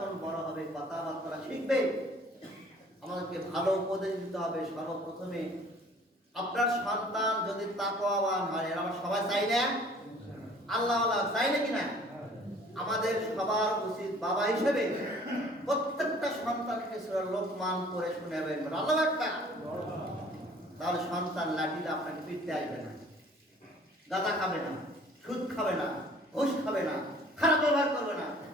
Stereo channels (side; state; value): both; normal; correlation 0.52